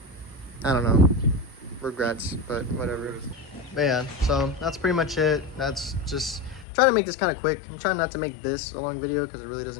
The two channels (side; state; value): right; drops out; at 6.7 s